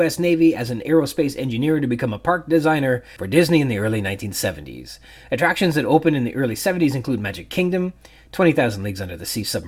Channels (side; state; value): both; identical; correlation 1.00